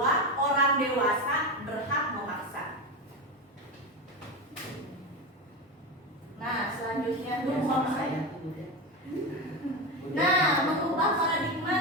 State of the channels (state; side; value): normal; both; correlation 0.17